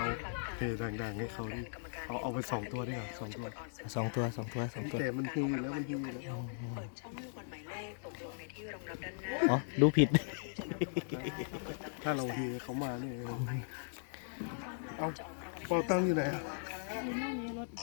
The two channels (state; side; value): silent; right; digital silence